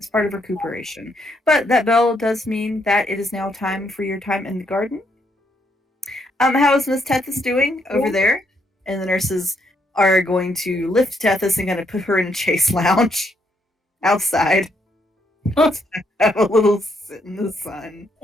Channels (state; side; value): normal; both; correlation 0.74